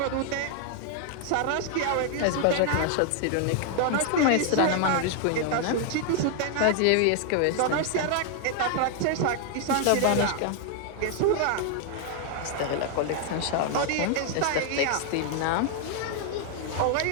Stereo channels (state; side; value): different; both; correlation 0.00